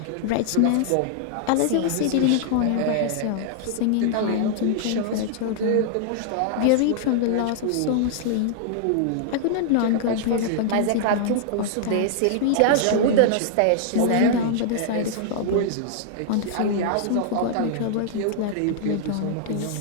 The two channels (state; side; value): different; both; correlation -0.01